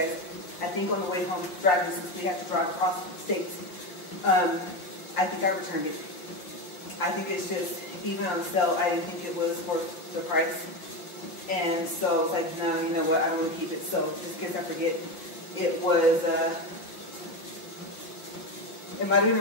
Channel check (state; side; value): late; right; 5.7 ms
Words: I think on the way home driving, since we have to drive across states, I think I returned it. I think it's just, even on sale, I didn't think it was worth the price. And so I was like, no, you know what, I don't want to keep it. So just in case I forget, it was, it might have been